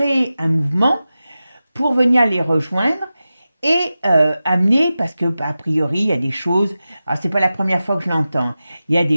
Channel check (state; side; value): inverted; both; correlation -0.94